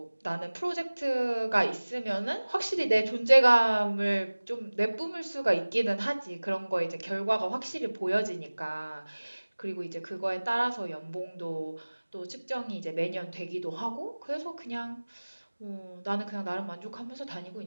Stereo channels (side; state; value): both; inverted; correlation -1.00